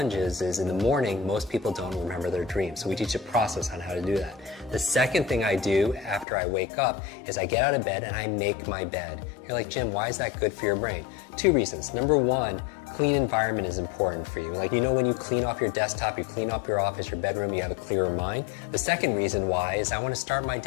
is in the morning, most people don't remember their dreams, so we teach a process on how to do that. The second thing I do after I wake up is I get out of bed and I make my bed. You're like, Jim, why is that good for your brain? Two reasons. Number one, clean environment is important for you. Like, when you clean off your desktop, you clean up your office, your bedroom, you have a clearer mind. The second reason why is I want to start my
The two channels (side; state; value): right; drops out; at 6.2 s